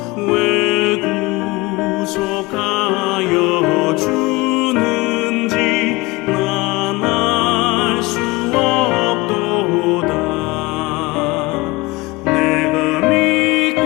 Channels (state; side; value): quieter; right; 22.7 dB